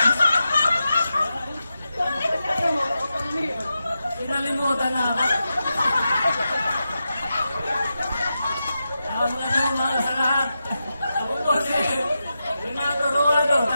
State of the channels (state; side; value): inverted; both; correlation -0.89